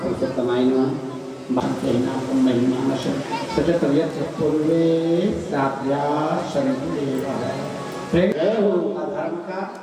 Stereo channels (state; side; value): identical; both; correlation 1.00